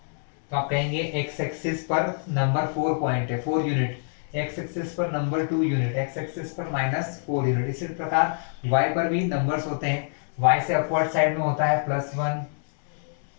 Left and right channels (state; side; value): silent; right; digital silence